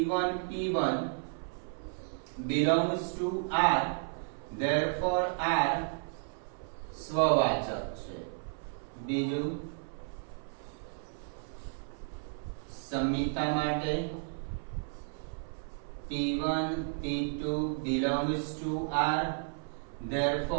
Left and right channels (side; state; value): left; silent; 56 dB below the other